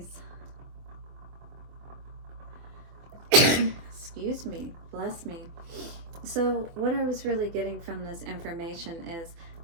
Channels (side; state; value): left; late; 24 ms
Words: Excuse me, bless me. So what I was really getting from this information is